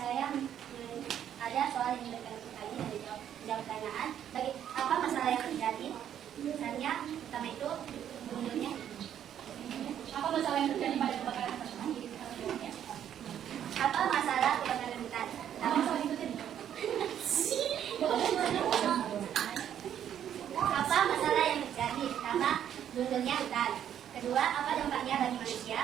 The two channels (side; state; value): left; quieter; 9.9 dB